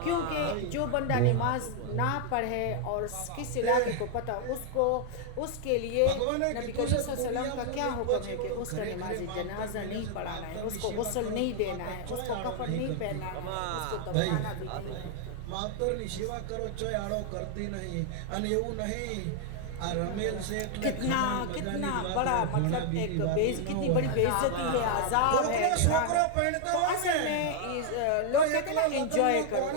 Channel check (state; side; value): different; both; correlation 0.00